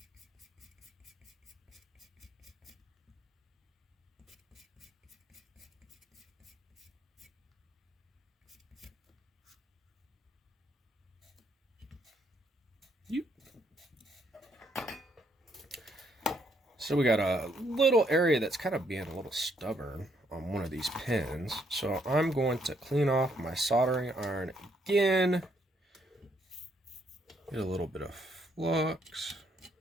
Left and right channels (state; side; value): normal; both; correlation 0.72